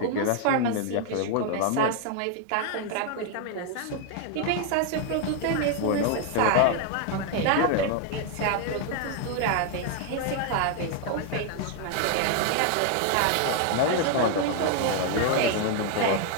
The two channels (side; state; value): both; different; correlation 0.00